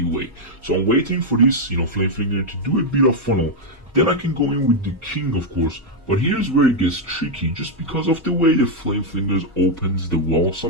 So I'm waiting for this, flame flinger to do a bit of funnel. Then I can go in with the king, of course. But here's where it gets tricky, just because of the way the flame flingers opens the wall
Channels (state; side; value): noise; left; hum, 30 dB below the sound